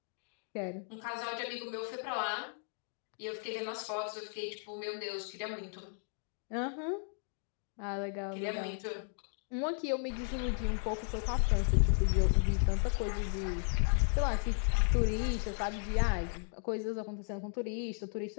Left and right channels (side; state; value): right; silent; 54 dB below the other